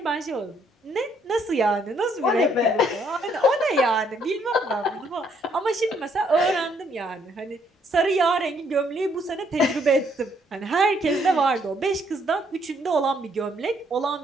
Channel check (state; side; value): normal; both; correlation 0.69